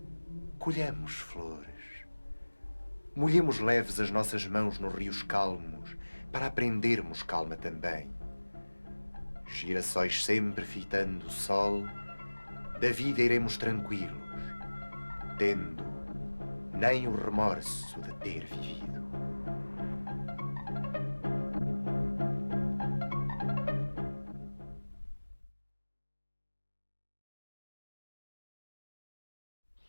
Colhamos flores. Molhemos leves as nossas mãos nos rios calmos para aprendermos calma também. Girassóis sempre fitando o sol, da vida iremos tranquilos, tendo nem o remorso de ter vivido.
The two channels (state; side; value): inverted; both; correlation -1.00